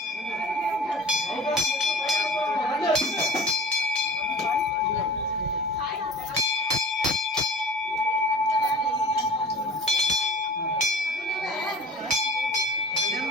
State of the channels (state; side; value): normal; both; correlation 0.41